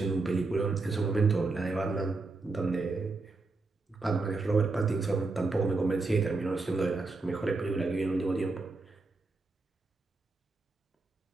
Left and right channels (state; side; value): quieter; left; 3.6 dB